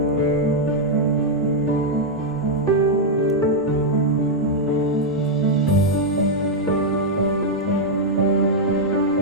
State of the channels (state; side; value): normal; both; correlation -0.03